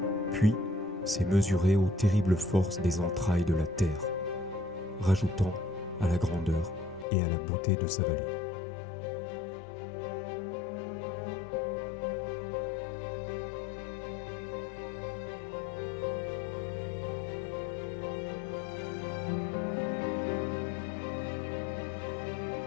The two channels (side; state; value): right; drops out; at 7.1 s